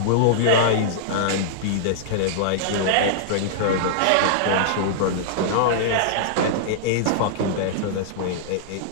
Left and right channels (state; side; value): different; both; correlation -0.02